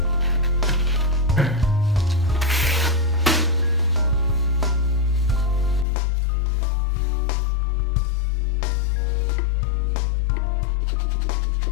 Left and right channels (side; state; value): right; drops out; at 5.9 s